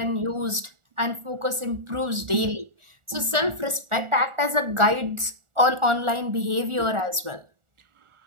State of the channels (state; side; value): late; left; 1.4 ms